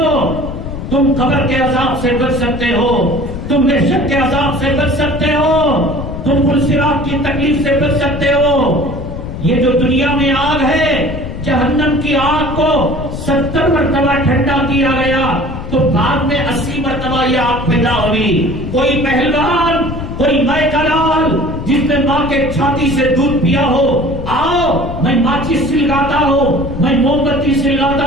تم قبر کے عذاب سے بچ سکتے ہو، تم محشر کے عذاب سے بچ سکتے ہو، تم پلسرات کی تکلیف سے بچ سکتے ہو۔ یہ جو دنیا میں آگ ہے، جہنم کی آگ کو 70 مرتبہ ٹھنڈا کیا گیا تو بعد میں 80 مرتبہ یہ آگ پیدا ہوئی۔ کوئی پہلوان، کوئی مائی کا لال جس نے ماں کے چھاتی سے دودھ پیا ہو، آؤ میں ماچس سلگاتا ہوں، میں موم بتی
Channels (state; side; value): noise; left; rumble, 7 dB below the sound